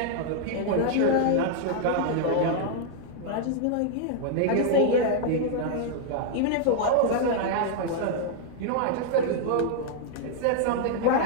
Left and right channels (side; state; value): both; different; correlation 0.00